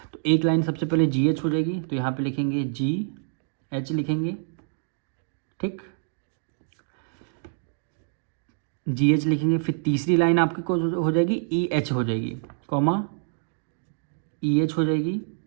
तो एक लाइन सबसे पहले जी एच हो जाएगी, तो यहाँ पे लिखेंगे जी एच लिखेंगे, ठीक, जी एच लिखेंगे, फिर तीसरी लाइन आपकी को हो जाएगी ई एच हो जाएगी, कॉमा ई एच हो जाएगी,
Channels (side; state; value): left; silent; digital silence